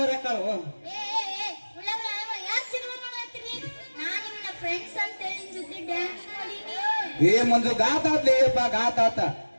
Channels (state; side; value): inverted; both; correlation -1.00